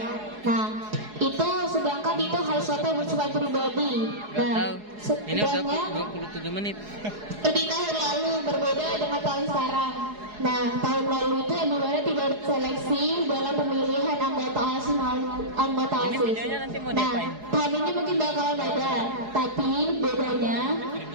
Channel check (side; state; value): left; late; 4.8 ms